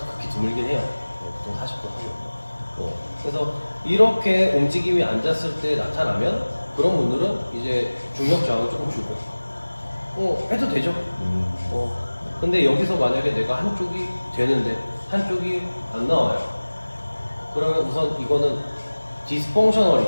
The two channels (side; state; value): both; inverted; correlation -1.00